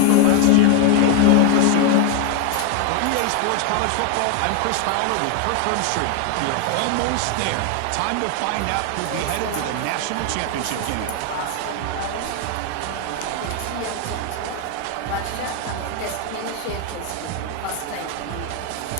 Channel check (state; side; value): different; both; correlation 0.01